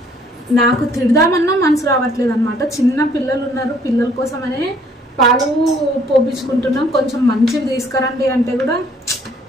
నాకు తిడదామన్నా మనసు రావట్లేదు అనమాట. చిన్న పిల్లలు ఉన్నారు, పిల్లల కోసమనే పాలు పోపించుకుంటున్నాం. కొంచెం మంచివి తీసుకురండి అంటే కూడా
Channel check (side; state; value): both; normal; correlation 0.61